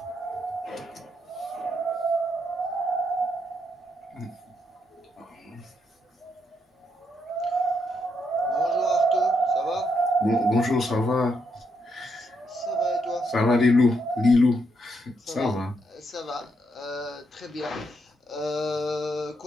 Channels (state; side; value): normal; both; correlation 0.78